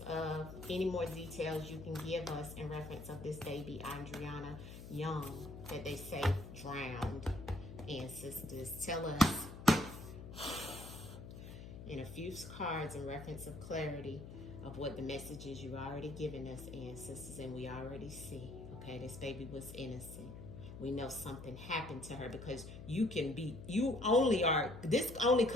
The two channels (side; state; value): left; noise; hum, 12 dB below the sound